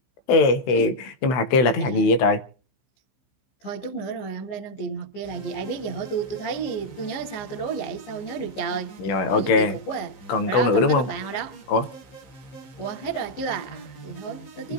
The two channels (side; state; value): right; late; 15 ms